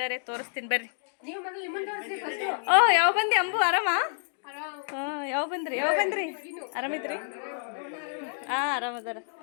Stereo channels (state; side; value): silent; right; digital silence